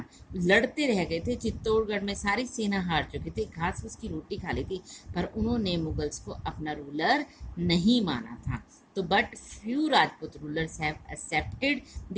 लड़ते रह गए थे, चित्तौड़गढ़ में सारी सेना हार चुकी थी, घास फूस की रोटी खा ली थी, पर उन्होंने मुगल्स को अपना रूलर नहीं माना था। तो but few Rajput rulers have accepted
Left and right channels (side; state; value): both; identical; correlation 1.00